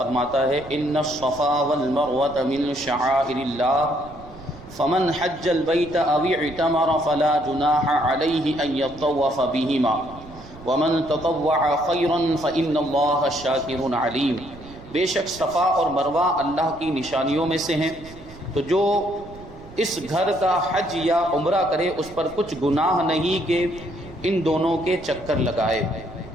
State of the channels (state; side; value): noise; right; rumble, 18 dB below the sound